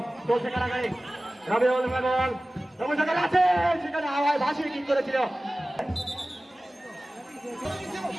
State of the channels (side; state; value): both; normal; correlation 0.97